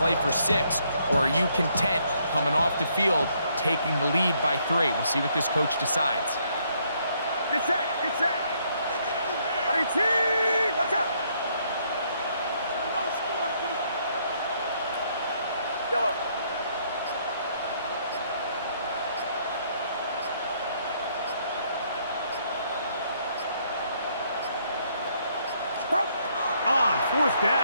for 6? Or are you content coming off the field, taking the lead by 3? We'll see what this coach decides. Get set. Watch out. Yellow. On 4th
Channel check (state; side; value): inverted; both; correlation -0.70